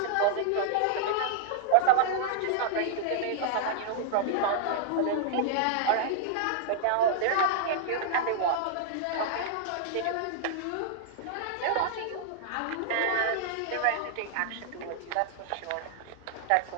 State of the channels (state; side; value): different; both; correlation -0.01